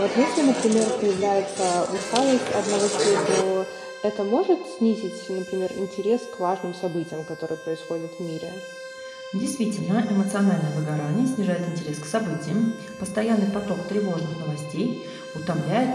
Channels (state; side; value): identical; both; correlation 1.00